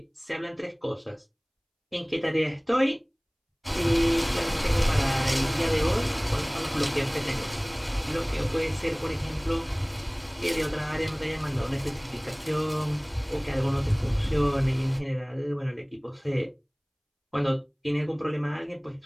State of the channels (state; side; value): identical; both; correlation 1.00